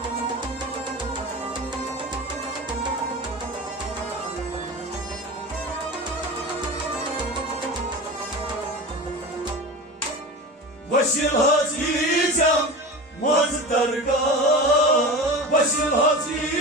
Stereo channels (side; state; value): both; normal; correlation 0.30